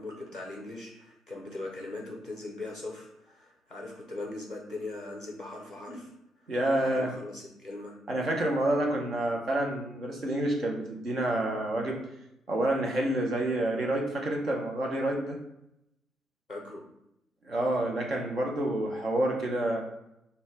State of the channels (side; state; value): both; normal; correlation 0.79